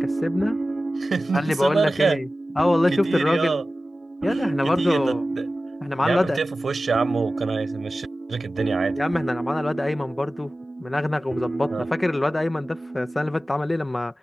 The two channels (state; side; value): normal; both; correlation 0.95